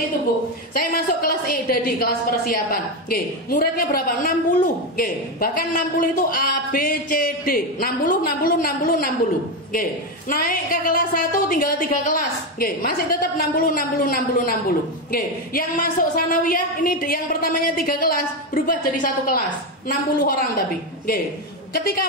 itu, Bu. Saya masuk kelas di kelas persiapan. Muridnya berapa? 60. Bahkan 60 itu A, B, C, D. 60. Naik ke kelas 1 tinggal 3 kelas. Masih tetap 60. Yang masuk sanawiyah ini yang pertamanya 3 kelas berubah jadi 1 kelas, 60 orang tapi. Ketika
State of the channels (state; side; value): normal; both; correlation 0.11